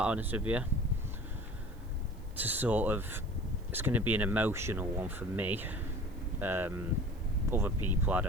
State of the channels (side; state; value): right; noise; hiss, 29 dB below the sound